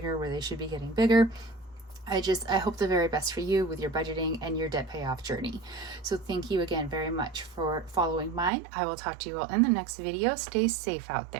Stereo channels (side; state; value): left; drops out; at 8.5 s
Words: where they should be getting bigger. I hope the very best for you with your budgeting and your debt payoff journey. So thank you again very much for following mine. I will talk to you all in the next video. Stay safe out